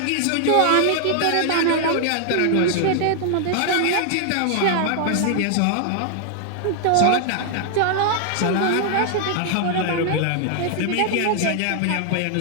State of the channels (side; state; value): both; different; correlation 0.00